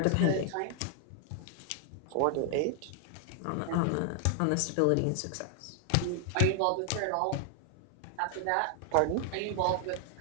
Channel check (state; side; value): different; both; correlation 0.00